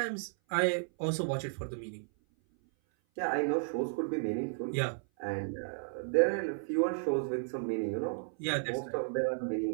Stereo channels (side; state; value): left; silent; 55 dB below the other